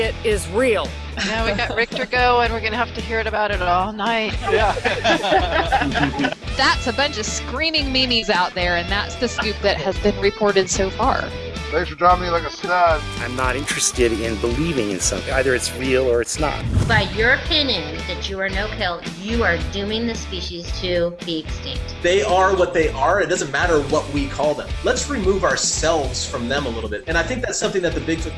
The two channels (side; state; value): both; identical; correlation 1.00